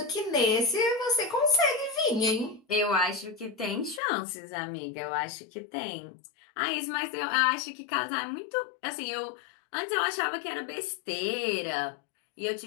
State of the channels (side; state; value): right; drops out; at 4.0 s